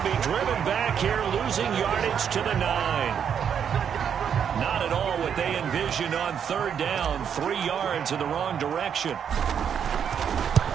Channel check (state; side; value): quieter; left; 8.0 dB